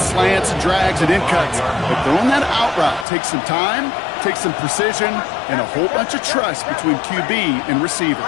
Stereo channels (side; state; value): right; drops out; at 3.1 s